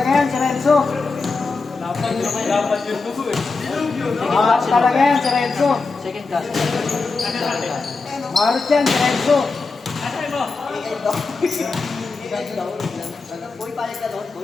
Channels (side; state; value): right; quieter; 4.1 dB